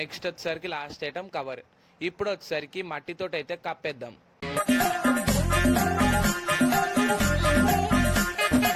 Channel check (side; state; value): both; identical; correlation 1.00